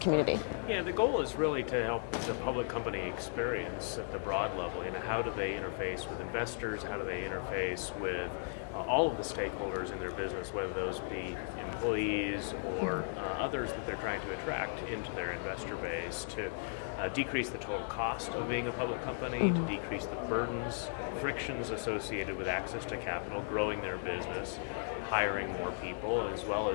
Yeah, the goal is really to help the public company experience at the broad level. How do they interface with investors? How do they interface with all of the stakeholders in their business, whether those be employees or others that they're trying to attract into their investor base, to decrease the total cost of being a public company, to decrease the burdens, frictions associated with access to capital, growing their business, hiring more people, as well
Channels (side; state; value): right; silent; digital silence